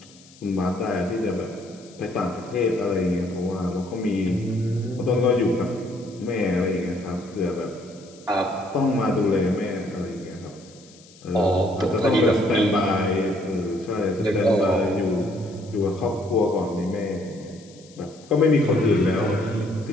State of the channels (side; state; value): left; noise; hiss, 24 dB below the sound